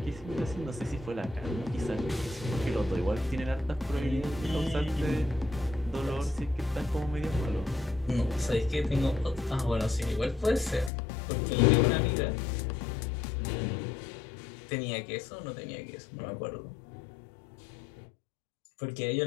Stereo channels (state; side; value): drops out; right; at 10.9 s